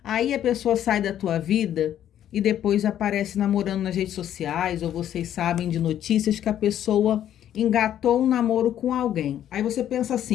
Aí a pessoa sai da tua vida e depois aparece namorando nas redes sociais, ou vocês sabem de notícias que a pessoa engatou um namoro com alguém. Aí você pensa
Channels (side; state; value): right; quieter; 10.9 dB